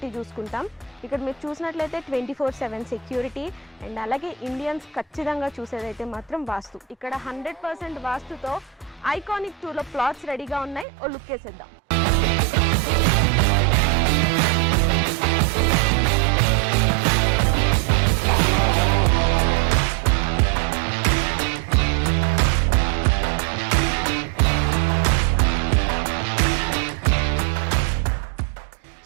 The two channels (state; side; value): drops out; left; at 10.9 s